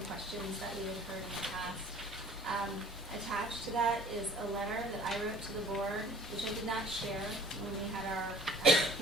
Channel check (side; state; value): both; normal; correlation 0.51